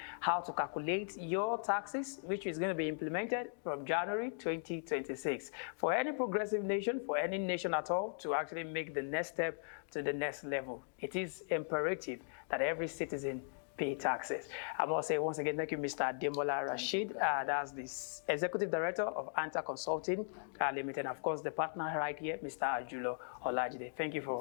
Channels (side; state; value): right; silent; digital silence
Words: how to calculate your taxes, which is going to be implemented from January 2026. For any progressive nation, for any nation at all, to actually make the next step to the next level, it is imperative that every citizen pay taxes. I must say once again, thank you, Mr. Ademola Rasheed. That's the Executive Director of Anther Consulting Limited. And of course, the partner right here, Mr. Ajulo Olajide. Thank you